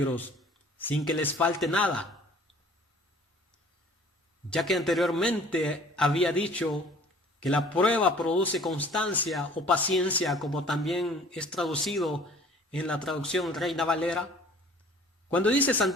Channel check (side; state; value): both; normal; correlation 0.51